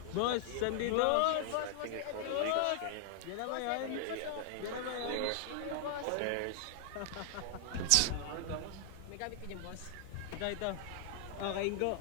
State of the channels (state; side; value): different; both; correlation -0.01